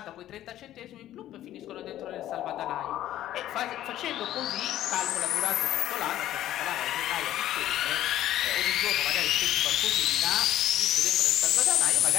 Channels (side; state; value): right; quieter; 13.0 dB